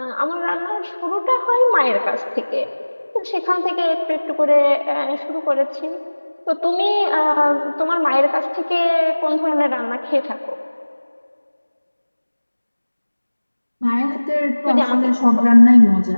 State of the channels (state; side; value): inverted; both; correlation -1.00